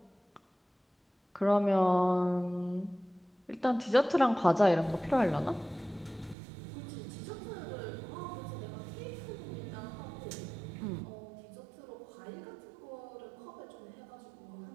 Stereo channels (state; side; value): drops out; left; at 6.4 s